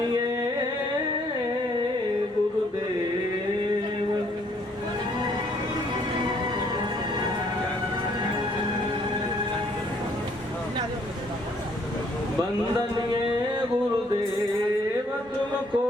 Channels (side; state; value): both; normal; correlation 0.65